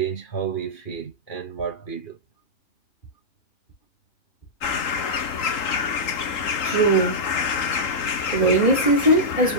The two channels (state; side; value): late; right; 3.8 ms